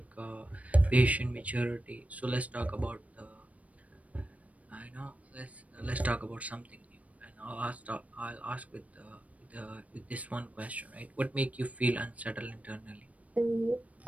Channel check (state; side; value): late; left; 0.068 ms